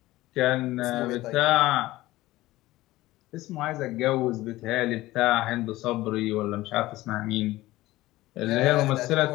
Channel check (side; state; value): right; quieter; 17.5 dB